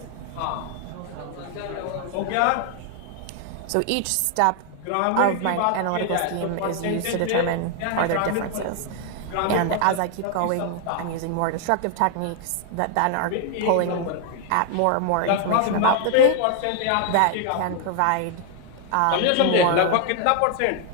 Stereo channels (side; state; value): both; different; correlation 0.00